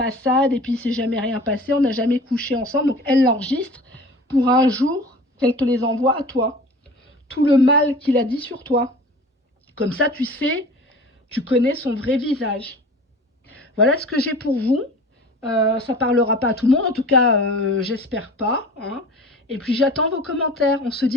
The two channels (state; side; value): normal; both; correlation 0.41